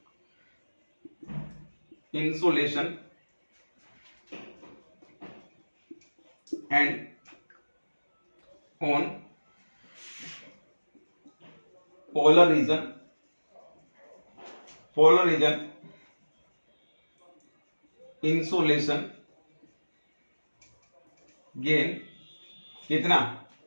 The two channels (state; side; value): inverted; both; correlation -1.00